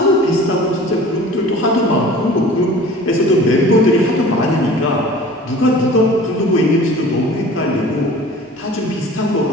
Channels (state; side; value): normal; both; correlation 0.44